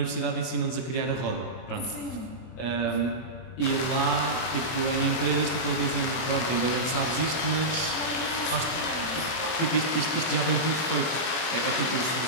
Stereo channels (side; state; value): right; late; 24 ms